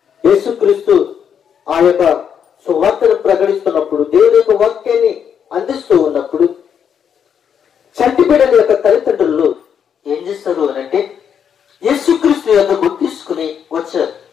యేసుక్రీస్తు ఆ యొక్క సువార్తను ప్రకటిస్తున్నప్పుడు, దేవుని యొక్క వాక్యాన్ని అందిస్తూ ఉన్నప్పుడు చంటి బిడ్డల యొక్క తల్లిదండ్రులు ఏం చేస్తారు అనంటే యేసుక్రీస్తు యొద్దకు తీసుకుని వచ్చారు.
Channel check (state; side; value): quieter; right; 7.9 dB